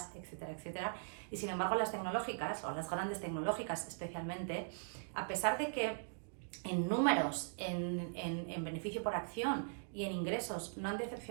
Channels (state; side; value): silent; left; digital silence